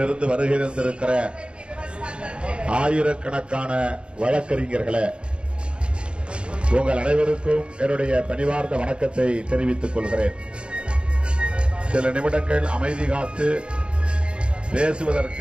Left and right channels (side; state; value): left; late; 0.054 ms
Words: வருகை தந்திருக்கிற ஆயிரக்கணக்கான வழக்கறிஞர்களே, உங்கள் அனைவருக்கும் என்னுடைய பணிவார்ந்த வணக்கத்தை தெரிவித்துக் கொள்கிறேன். சில நிமிடங்கள் அமைதி காத்து